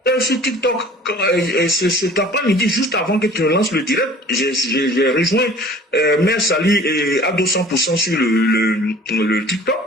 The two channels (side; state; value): both; normal; correlation 0.48